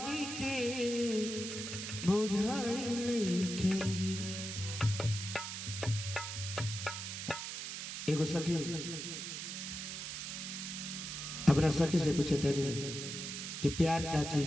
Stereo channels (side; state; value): right; noise; hiss, 6 dB below the sound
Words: के बुझाइल नहीं खे। एगो सखी अपना सखी से पूछे तनी कि प्यार का